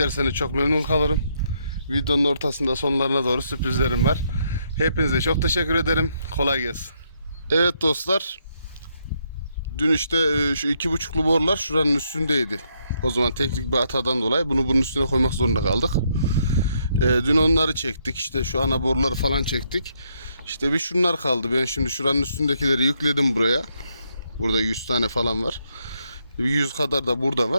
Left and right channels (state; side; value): inverted; both; correlation -0.75